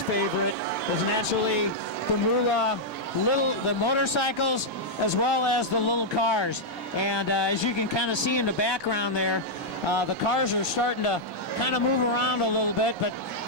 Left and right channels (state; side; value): normal; both; correlation -0.05